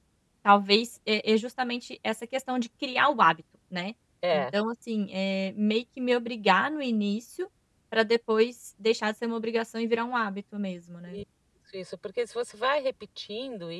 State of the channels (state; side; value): identical; both; correlation 1.00